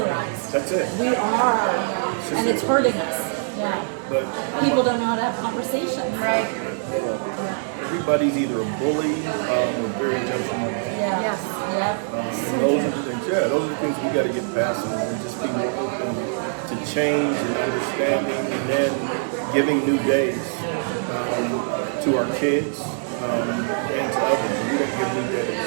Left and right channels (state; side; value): silent; left; digital silence